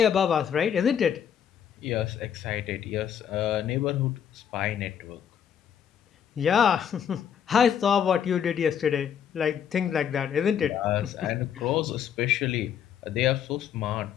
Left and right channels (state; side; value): quieter; right; 8.6 dB